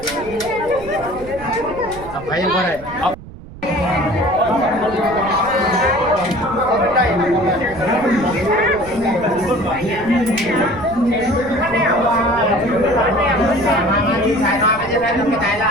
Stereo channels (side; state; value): right; noise; rumble, 16 dB below the sound